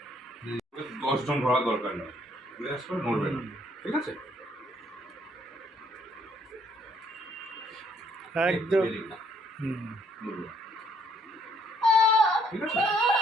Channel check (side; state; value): both; normal; correlation 0.67